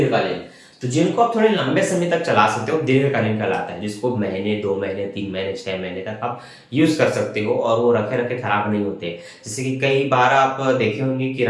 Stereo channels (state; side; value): identical; both; correlation 1.00